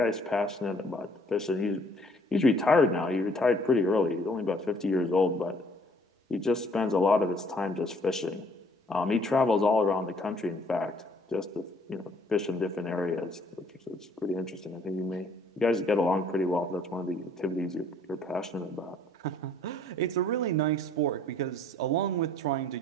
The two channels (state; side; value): normal; both; correlation 0.60